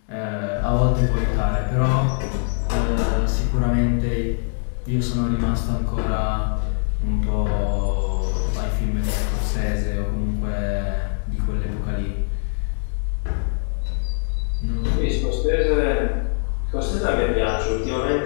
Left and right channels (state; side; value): silent; right; 64 dB below the other